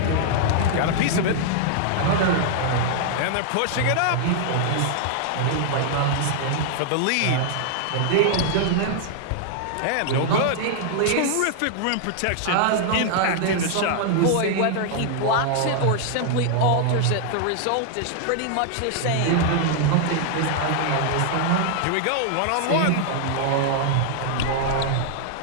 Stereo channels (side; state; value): both; different; correlation -0.01